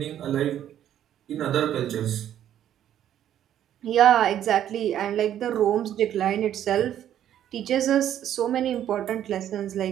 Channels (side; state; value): left; quieter; 10.9 dB